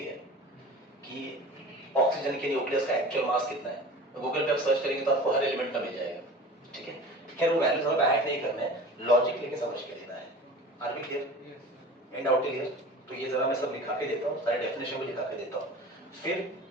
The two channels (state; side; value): normal; both; correlation 0.38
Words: है कि ऑक्सीजन के न्यूक्लियस का एक्चुअल मास कितना है। तो गूगल पे आप सर्च करेंगे तो आपको हर एलिमेंट का मिल जाएगा, ठीक है। खैर वो वैल्यूज हमें ऐड नहीं करना है, लॉजिक लेके समझ के लेना है। Are we clear? And out clear? तो ये जरा मैं सब लिखा के देता हूँ, सारे डेफिनेशन भी लिखा के देता हूँ, फिर